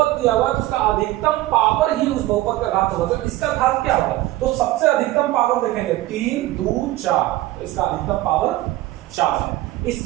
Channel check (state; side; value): quieter; left; 16.9 dB